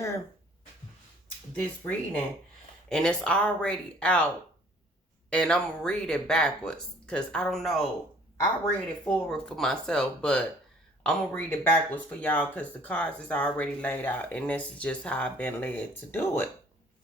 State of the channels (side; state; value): both; normal; correlation 0.56